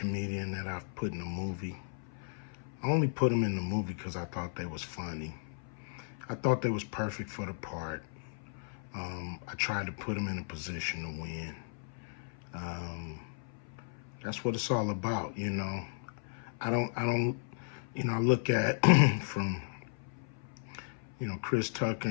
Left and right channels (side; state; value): right; silent; 54 dB below the other